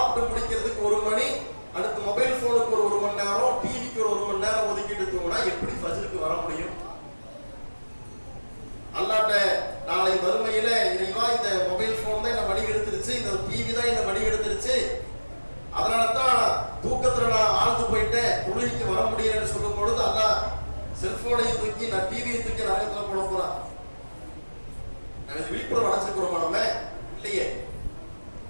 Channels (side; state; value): both; inverted; correlation -1.00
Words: முடிக்கிறதுக்கு 1 மணி, அடுத்து மொபைல் போனுக்கு ஒரு 1 மணி நேரம், டிவிக்கு ஒரு 1 மணி நேரம் ஒதுக்கிட்டு தூங்கினா எப்படி ஃபஜ்ருக்கு வர முடியும்? அல்லாட்ட நாளை வறுமையில இறைவா இந்த மொபைல் போன் தான் என்ன வழி எடுத்துருச்சு, இந்த டிவி தான் என்ன வழி எடுத்துருச்சு, அதனாலதான் தூக்கத்துல நான் ஆழ்ந்து போயிட்டேன், தொழுகைக்கு வர முடியலன்னு சொல்லும் பொழுது அல்லா செல்போனையும் தூக்கி நான் டிவியை தூக்கி நரகத்துல போட போறான். நாங்கள் விழிப்புணர்வு அடைச்சிருக்கிறோமா? நம்ம இல்லையே.